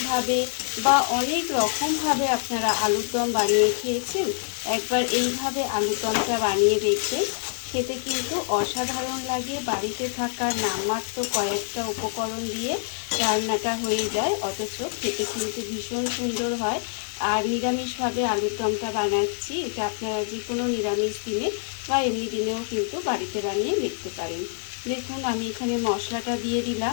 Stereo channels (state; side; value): silent; right; 61 dB below the other